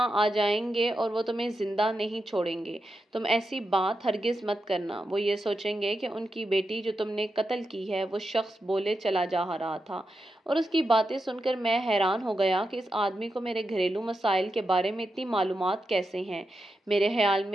آ جائیں گے اور وہ تمہیں زندہ نہیں چھوڑیں گے۔ تم ایسی بات ہرگز مت کرنا، وہ یہ سوچیں گے کہ ان کی بیٹی جو تم نے قتل کی ہے۔ وہ شخص بولے چلا جا رہا تھا اور اس کی باتیں سن کر میں حیران ہو گیا کہ اس آدمی کو میرے گھریلو مسائل کے بارے میں اتنی معلومات کیسے ہیں۔ میرے خیال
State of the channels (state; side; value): normal; both; correlation 0.88